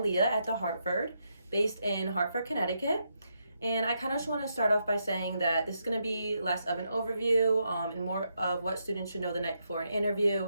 at the Hartford, based in Hartford, Connecticut. And I kind of just want to start off by saying that this is going to be less of an overview and more of what students should know the night before an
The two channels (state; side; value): inverted; both; correlation -0.81